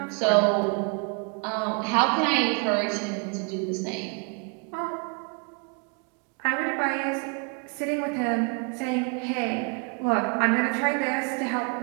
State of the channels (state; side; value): quieter; left; 36.8 dB